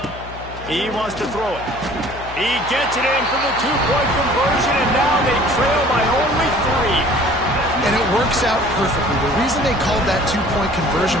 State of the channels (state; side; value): noise; left; hum, 14 dB below the sound